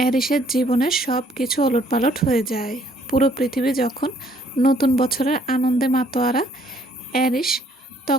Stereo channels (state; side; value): normal; both; correlation 0.64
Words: এরিসের জীবনের সব কিছু ওলটপালট হয়ে যায়। পুরো পৃথিবী যখন নতুন বছরের আনন্দে মাতোয়ারা, এরিস